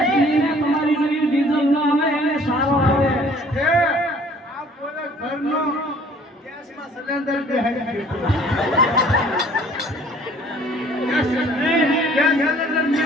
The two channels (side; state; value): both; normal; correlation 0.54